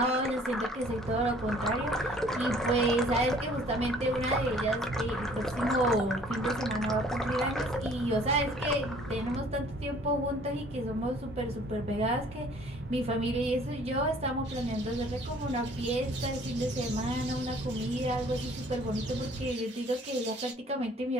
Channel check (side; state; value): both; normal; correlation 0.55